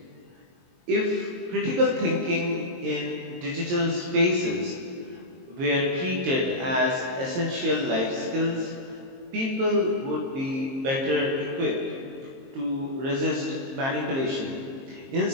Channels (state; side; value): late; left; 22 ms